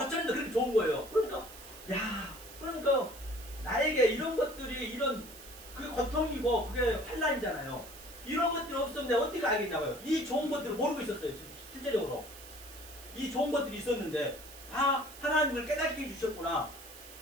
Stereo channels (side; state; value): right; noise; hiss, 16 dB below the sound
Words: 그렇게 좋은 거예요. 그러니까 나에게 이런 것들이, 이런 그게 고통이고 그게 환난이잖아요. 이런 것들이 없었는데 어떻게 알겠냐고요. 이 좋은 것들을 모르고 있었어요. 실제적으로 이 좋은 것들이 있었는데, 하나님을 깨닫게 해주셨구나.